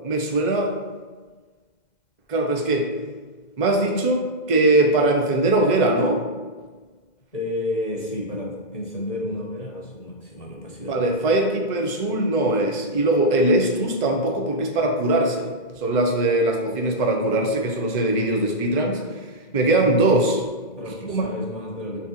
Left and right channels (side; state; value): right; late; 2.0 ms